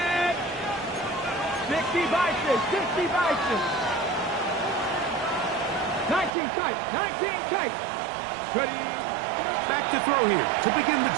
60 Bison, 60 Bison. 19 tight, 19 tight. Ready. Back to throw here to begin the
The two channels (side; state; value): left; drops out; at 6.4 s